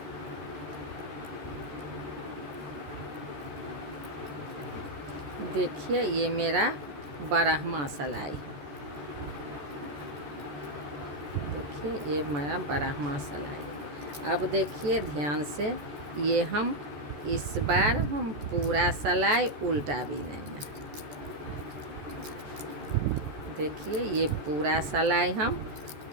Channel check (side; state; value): left; late; 14 ms